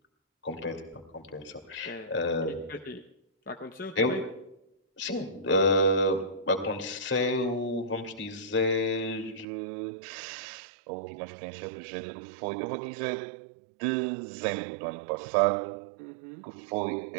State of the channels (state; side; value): drops out; left; at 9.5 s